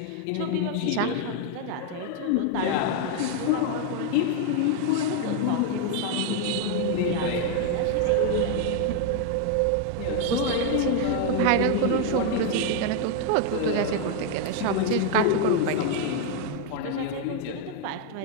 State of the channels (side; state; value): both; different; correlation 0.01